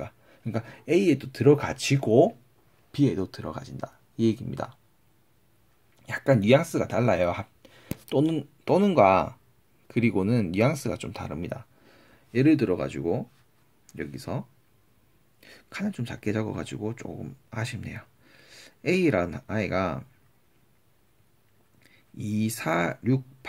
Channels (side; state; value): both; identical; correlation 1.00